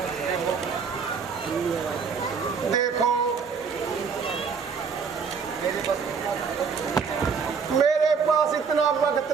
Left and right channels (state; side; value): quieter; left; 5.8 dB